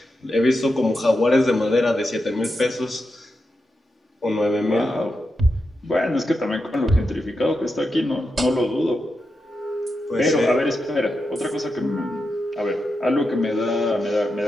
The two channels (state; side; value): normal; both; correlation 0.87